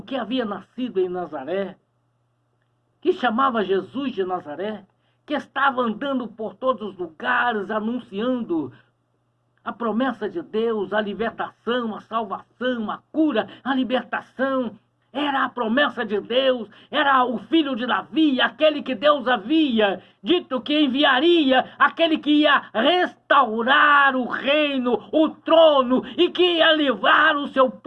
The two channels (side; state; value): both; identical; correlation 1.00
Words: que havia nascido em Nazaré, que chamava Jesus de Nazaré, que estava andando por todos os lugares, anunciando a promessa de Deus, a libertação, a salvação, a cura, a libertação. Era a promessa de Deus, era o filho de Davi, aquele que Deus havia dito que enviaria, aquele que ia restaurar o reino, o trono, e que ia livrar o seu